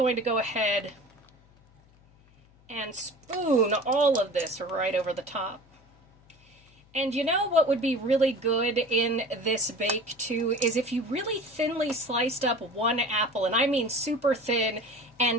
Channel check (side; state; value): left; noise; hum, 29 dB below the sound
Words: to go ahead and spoon all of this right over the top. And you know what would be really good in this bake too is if you really thinly sliced up one apple, and I mean super thin,